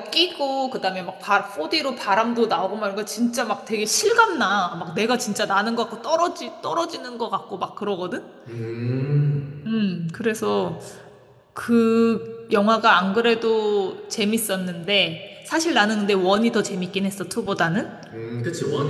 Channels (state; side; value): identical; both; correlation 1.00